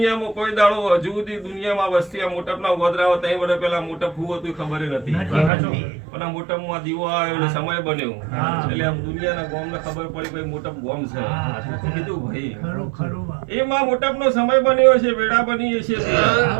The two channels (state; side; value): drops out; left; at 5.5 s